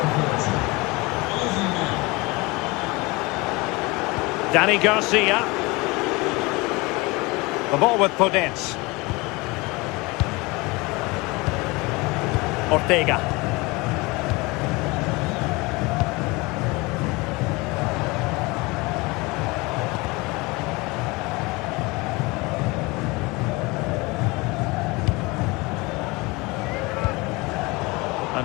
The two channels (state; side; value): quieter; right; 24.3 dB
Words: Dani Garcia. The ball with Podence. Ortega.